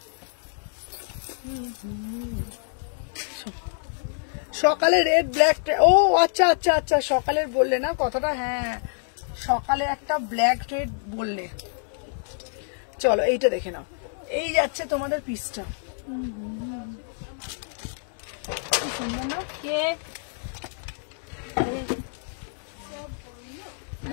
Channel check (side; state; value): right; silent; digital silence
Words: সকালে রেড ব্ল্যাক, ও আচ্ছা আচ্ছা আচ্ছা, সকালের বললে না কথাটা, হ্যাঁ সকালে একটা ব্ল্যাক রেড বললে। চলো এইটা দেখে নাও, এই যাচ্ছে তোমাদের পিসটা, কি সুন্দর না? কে